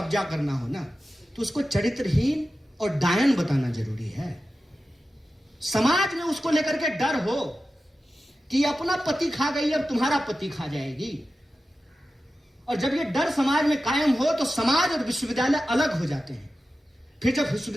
करना हो ना, तो उसको चरित्रहीन और डायन बताना जरूरी है। समाज में उसको लेकर के डर हो कि अपना पति खा गई, अब तुम्हारा पति खा जाएगी। और जब ये डर समाज में कायम हो तो समाज और विश्वविद्यालय अलग हो जाते हैं। फिर जब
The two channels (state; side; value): normal; both; correlation 0.93